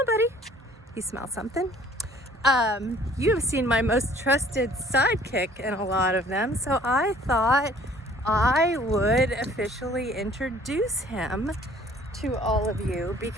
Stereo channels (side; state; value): both; normal; correlation 0.55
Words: buddy. You smell something? You have seen my most trusted sidekick in a lot of them, so I thought I would officially introduce him to all of you